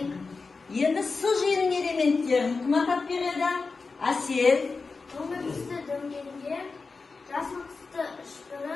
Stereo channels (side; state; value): right; quieter; 4.3 dB